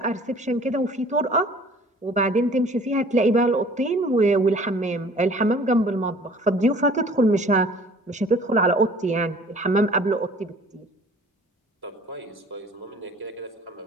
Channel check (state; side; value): normal; both; correlation 0.50